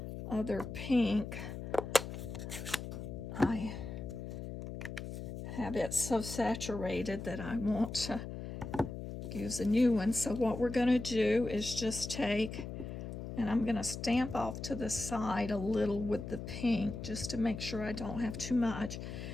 other pink, I have it so saturated that I want to use a new one. So what we're going to do is just take, and I'm going to stamp off to the side a little with the pink just to make sure I don't have too much.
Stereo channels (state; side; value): noise; left; hum, 7 dB below the sound